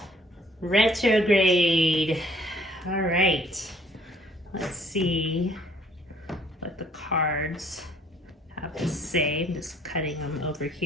retrograde. All right. Let's see what the cards have to say. I'm just cutting them over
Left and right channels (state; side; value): normal; both; correlation 0.61